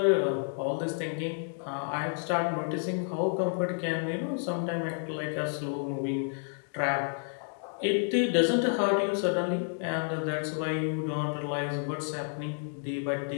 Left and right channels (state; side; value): silent; right; 58 dB below the other